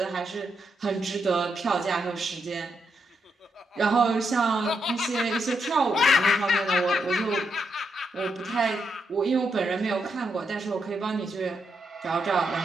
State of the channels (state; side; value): normal; both; correlation 0.81